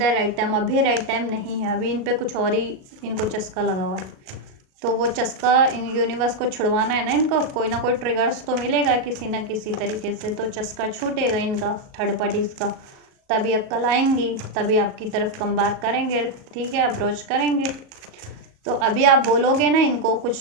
राइट टाइम, अभी राइट टाइम नहीं है, अभी इन पे कुछ और ही इनको चस्का लगा हुआ है, तो वो चस्का इन यूनिवर्स को छुड़वाना है ना, इनको कोई ना कोई ट्रिगर्स तो मिलेगा किसी ना किसी तरीके से, तो चस्का छूटेगा इनका थर्ड पार्टीज का, तभी अक्ल आएंगी, तभी आपकी तरफ कम बैक करेंगे, ठीक है, अप्रोच करेंगे। तो अभी आप बोलोगे ना इनको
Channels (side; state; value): left; late; 37 ms